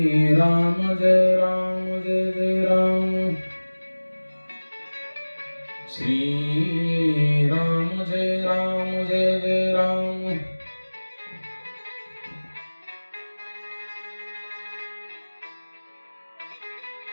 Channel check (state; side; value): inverted; both; correlation -1.00